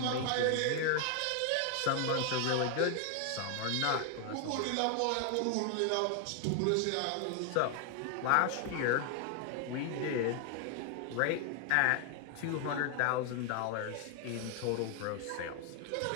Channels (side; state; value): both; different; correlation 0.00